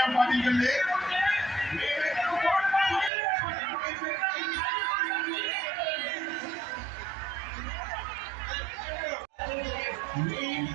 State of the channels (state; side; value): drops out; left; at 3.1 s